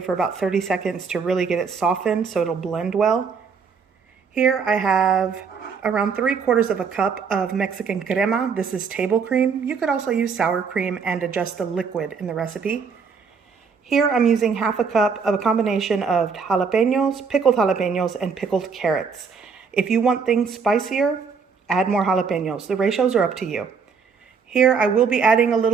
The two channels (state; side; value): quieter; left; 5.7 dB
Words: for about 30 seconds to really get it softened so it'll blend well. Here I have around 3/4 of a cup of Mexican crema. This is table cream. You could also use sour cream and adjust the liquid in the recipe. Here I'm using half a cup of a combination of jalapenos, and pickled carrots. If you want things spicier, add more jalapenos. The ratios are up to you. Here I will be adding a